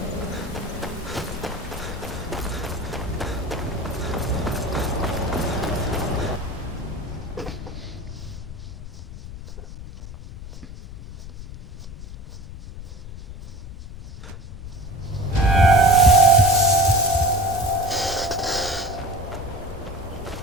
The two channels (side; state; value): left; noise; rumble, 12 dB below the sound